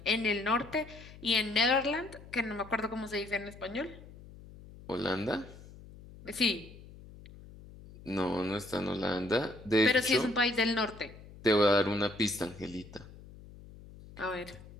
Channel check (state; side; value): noise; left; hum, 18 dB below the sound